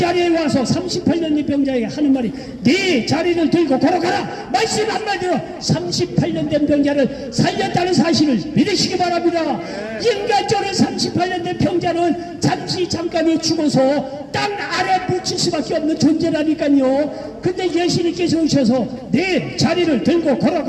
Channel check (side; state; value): both; identical; correlation 1.00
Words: 와서 38년 된 병자에게 하는 말이, 네 자리를 들고 걸어가라. 말씀 한마디로 38년 된 병자를 살렸다는 사실을 믿으시기 바랍니다. 인간적으로 38년 된 병자는 잠깐이 죽어서 땅 아래 묻힐 수밖에 없는 존재라니까요. 근데 예수님께서 오셔서 네 자리를 들고